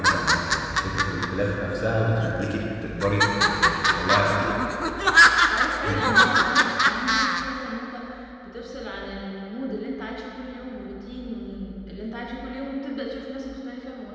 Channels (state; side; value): identical; both; correlation 1.00